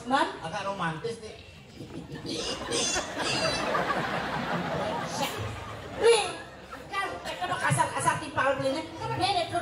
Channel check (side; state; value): both; identical; correlation 1.00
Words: Man? Agak romantis nih. Nih, kan kalau kasar timpal belinya. Nih